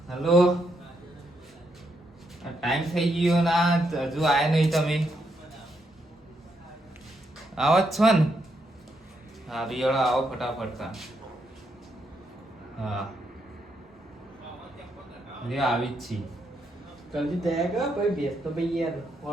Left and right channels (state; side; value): normal; both; correlation 0.79